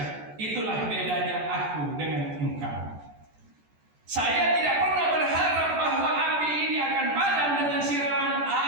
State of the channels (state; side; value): late; left; 14 ms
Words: itulah bedanya aku dengan engkau. Saya tidak pernah berharap bahwa api ini akan padam dengan siraman